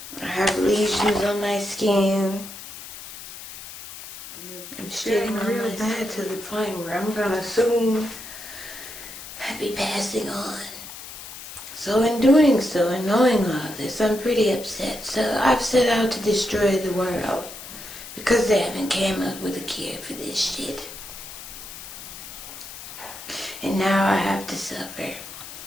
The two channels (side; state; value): left; noise; hiss, 13 dB below the sound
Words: I have lesions on my skin. I'm shitting real bad to the point where I'm gonna soon be passing on. So in doing so and knowing all this, I'm pretty upset. So I've set out to destroy the world because they haven't came up with a cure for this shit. And now I have to suffer.